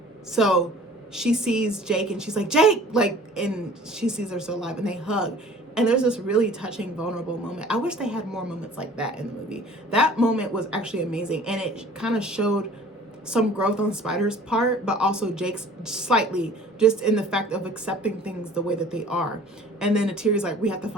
so she sees Jake and she's like, Jake, like, and she sees her still alive, and they hug. And there's this really touching, vulnerable moment. I wish they had more moments like that in the movie. That moment was actually amazing. And it kind of showed some growth on Spider's part, but also Jake's slightly, just in the fact of accepting things the way that they are. And then Neytiri's like, we have to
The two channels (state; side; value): normal; both; correlation 0.48